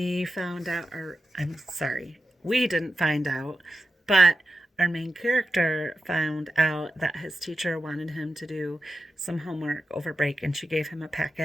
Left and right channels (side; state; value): both; normal; correlation 0.91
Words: found out, or I'm sorry, we didn't find out, but our main character found out that his teacher wanted him to do some homework over break, and she gave him a